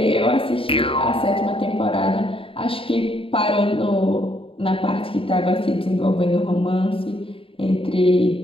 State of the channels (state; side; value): late; right; 0.26 ms